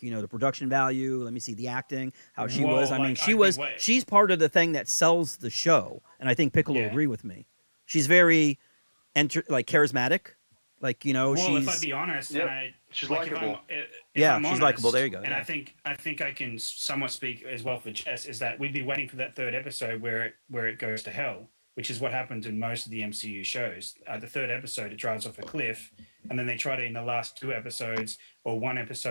production value. Let me see the acting, how she was. I mean, she's part of the thing that sells the show, and I think Piccolo will agree with me. She's very, charismatic. Like, Well, she's. if I'd be honest, Yep. and She's if likable. I'm she's honest, likable. There you go. And Yeah. I think I can somewhat speak as well for Jess is that we'd be waiting for that third episode where it goes to hell, which is what happens in most of the MCU shows. The third episode, it drives off a cliff, and then they try to, in the last 2 episodes or 1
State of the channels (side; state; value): both; inverted; correlation -1.00